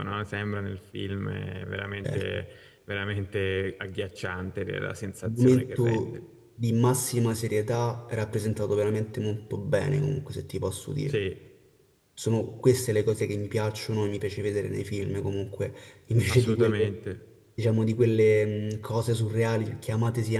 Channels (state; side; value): identical; both; correlation 1.00